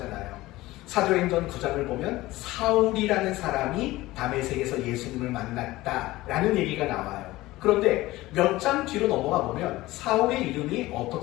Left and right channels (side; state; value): right; quieter; 18.1 dB